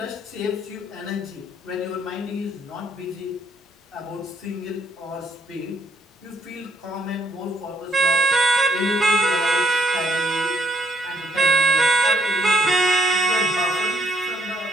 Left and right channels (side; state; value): both; normal; correlation 0.69